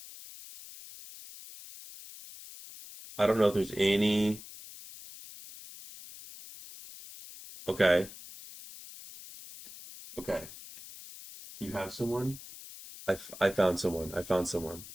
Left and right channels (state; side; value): noise; left; hiss, 15 dB below the sound